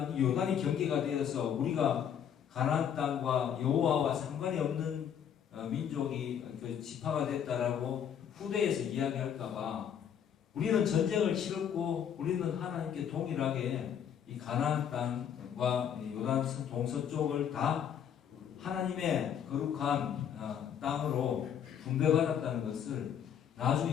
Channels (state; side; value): quieter; right; 8.6 dB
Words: 이 요단이 경계가 되어서 우리가 가나안 땅과 여호와와 상관이 없는 민족이 그 지파가 됐다라고 후대에서 이야기할까봐 우리는 전쟁을 치렀고 우리는 하나님께 동일하게 이 가나안 땅과 요단 동서쪽을 다 하나님의 거룩한 땅으로 분배받았다는 것을